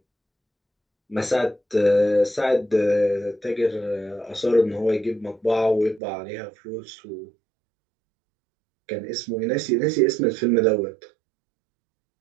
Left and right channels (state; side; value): drops out; left; at 6.0 s